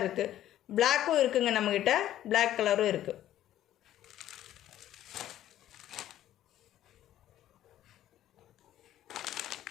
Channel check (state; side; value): quieter; right; 12.7 dB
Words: இருக்குது. பிளாக்கும் இருக்குங்க நம்மக்கிட்ட, பிளாக் கலரும் இருக்குது.